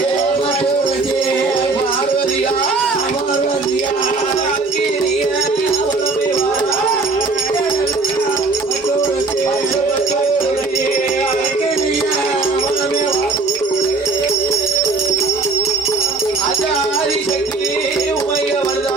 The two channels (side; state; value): left; quieter; 3.8 dB